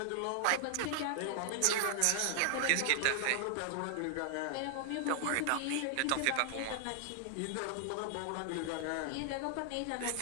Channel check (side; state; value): both; different; correlation 0.00